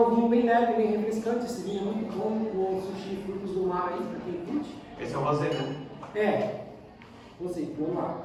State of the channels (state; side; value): identical; both; correlation 1.00